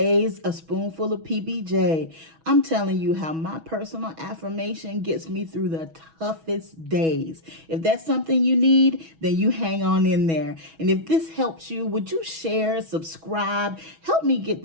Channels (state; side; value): late; left; 6.2 ms